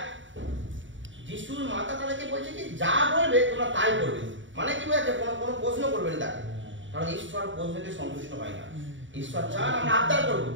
যিশুর মাতা তাদেরকে বলছে কি যা বলবে তোমরা তাই করবে, মানে কি বলছে কোনো কোনো প্রশ্ন করবেন তাকে, কারণ ঈশ্বর প্রশ্নকে সন্তুষ্ট হয় না। ঈশ্বর চান আমরা আবদার করবো,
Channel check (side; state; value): left; late; 0.55 ms